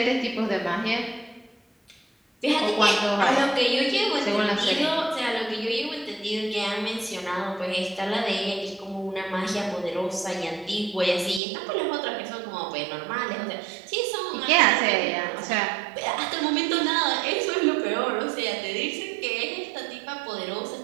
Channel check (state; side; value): drops out; left; at 11.4 s